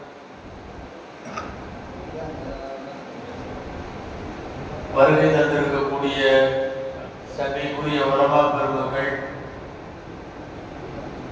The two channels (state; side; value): identical; both; correlation 1.00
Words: வருகை தந்திருக்கக்கூடிய சபைக்குரிய உலமா பெருமக்கள்,